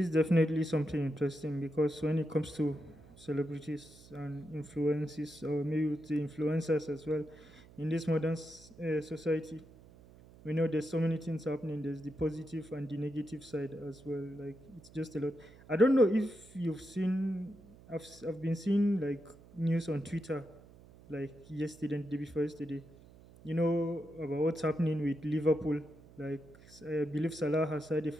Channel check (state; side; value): noise; right; hum, 22 dB below the sound